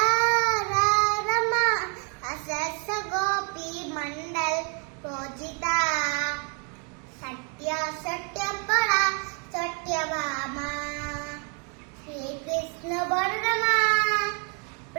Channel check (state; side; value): quieter; left; 38.3 dB